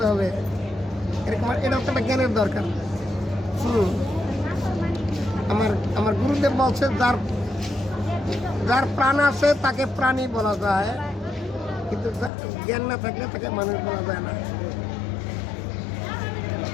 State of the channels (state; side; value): drops out; right; at 12.3 s